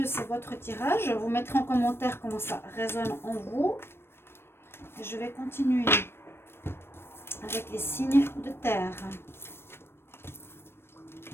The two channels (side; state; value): right; late; 0.12 ms